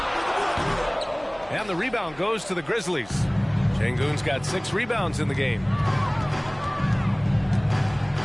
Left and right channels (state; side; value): noise; right; hum, 22 dB below the sound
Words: And the rebound goes to the Grizzlies. Şengün's got 6 rebounds in the game.